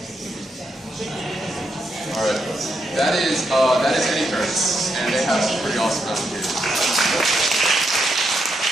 Alright, that is Eddy currents, and they have some pretty awesome applications.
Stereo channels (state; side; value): normal; both; correlation 0.81